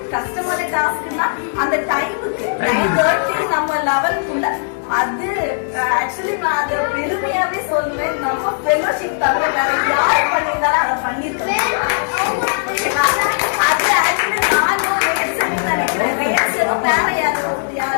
கஷ்டமான டாஸ்க்னா அந்த டைமுக்கு 9:30 நம்ம லெவலுக்குள்ள அது ஆக்சுவலி நான் அதை பெருமையாவே சொல்லுவேன். நம்ம ஃபெலோஷிப் தவிர வேற யார் பண்ணியிருந்தாலும் அதை பண்ணிருக்கேன். அது ஆக்சுவலி நான் நினைக்கிறேன். நினைக்கிறேன். ரேச்சலும் வேற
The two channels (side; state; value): right; silent; digital silence